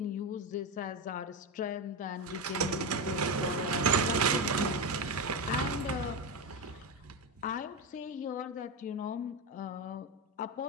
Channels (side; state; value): both; normal; correlation 0.13